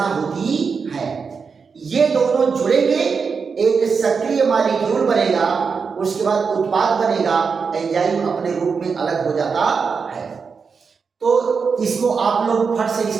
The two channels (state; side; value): quieter; left; 5.5 dB